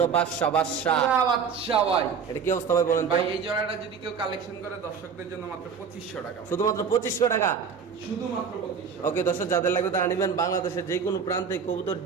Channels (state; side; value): quieter; left; 6.3 dB